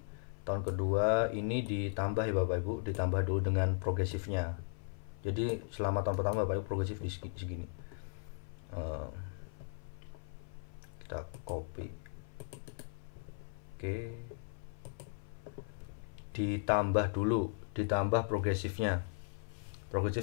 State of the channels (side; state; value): right; silent; 53 dB below the other